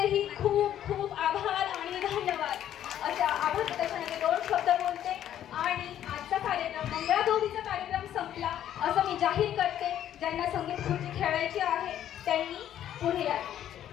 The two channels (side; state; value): right; quieter; 11.0 dB